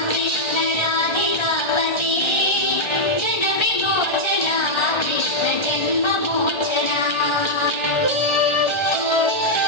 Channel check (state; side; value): late; right; 1.4 ms